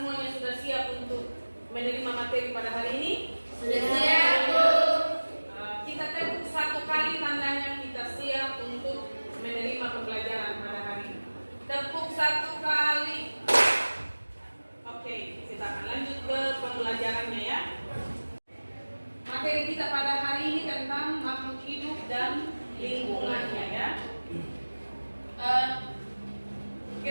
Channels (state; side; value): inverted; both; correlation -1.00